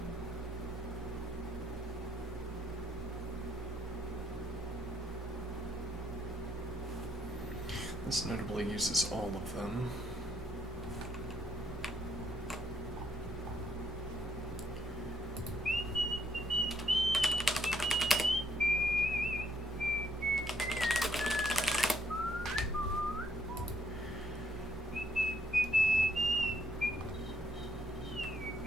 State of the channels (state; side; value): normal; both; correlation 0.72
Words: This notably uses all of them.